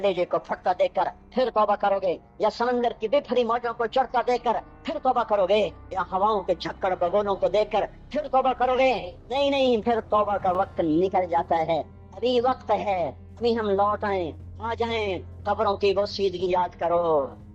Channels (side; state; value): both; identical; correlation 1.00